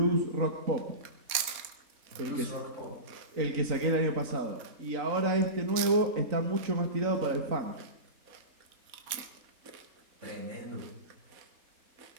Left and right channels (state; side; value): late; left; 4.1 ms